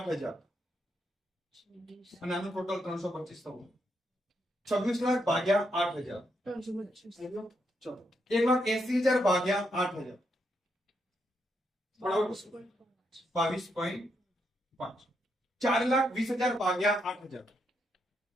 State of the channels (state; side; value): normal; both; correlation 0.79